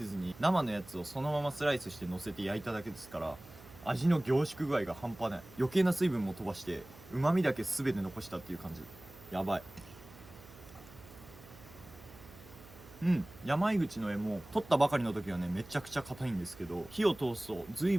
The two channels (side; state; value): right; noise; hum, 20 dB below the sound